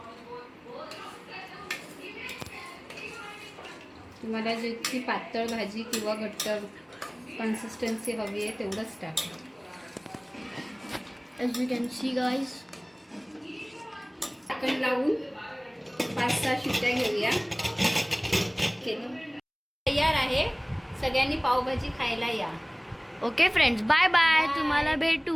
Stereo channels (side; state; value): both; identical; correlation 1.00